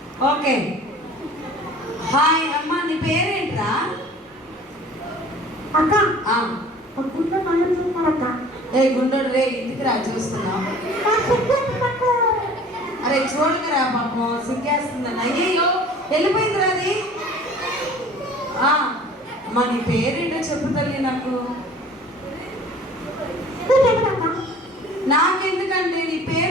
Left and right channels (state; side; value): normal; both; correlation 0.47